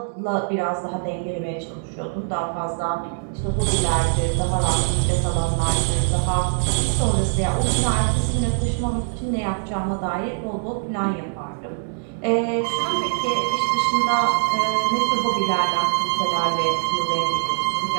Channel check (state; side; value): silent; left; digital silence